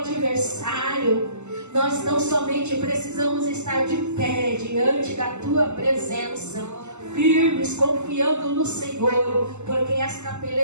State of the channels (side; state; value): left; late; 0.83 ms